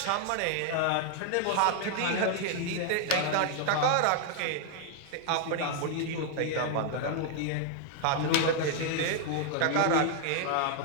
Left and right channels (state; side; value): different; both; correlation 0.00